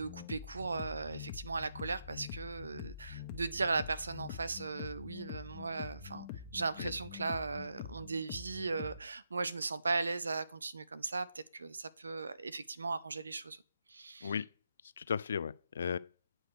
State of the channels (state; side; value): inverted; both; correlation -0.82